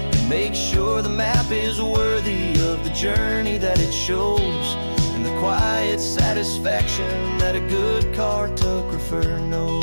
make sure the map is worthy of the journey that it shows, and the quiet satisfaction that a good cartographer knows.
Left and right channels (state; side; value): inverted; both; correlation -1.00